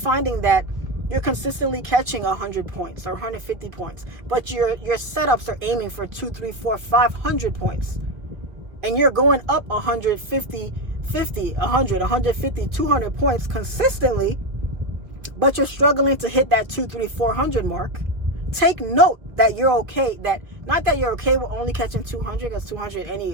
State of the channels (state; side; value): late; left; 2.4 ms